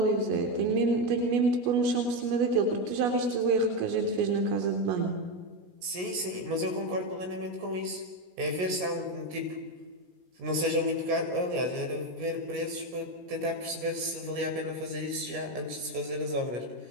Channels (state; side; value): late; left; 17 ms